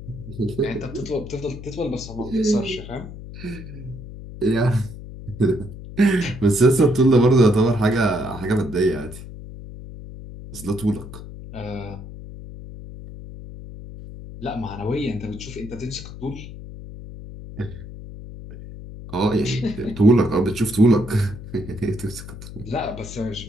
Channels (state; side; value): noise; left; hum, 13 dB below the sound